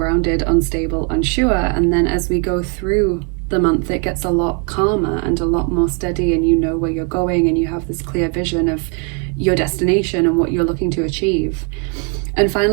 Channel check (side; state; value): left; quieter; 35.2 dB